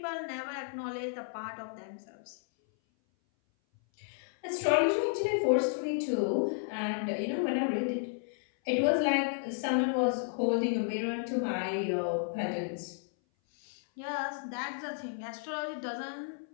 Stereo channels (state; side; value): silent; right; 56 dB below the other